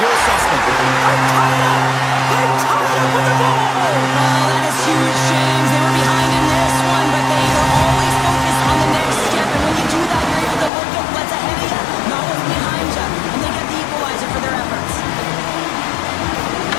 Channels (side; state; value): right; drops out; at 10.7 s